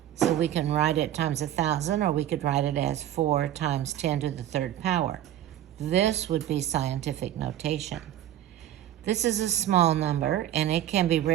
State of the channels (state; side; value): quieter; left; 12.0 dB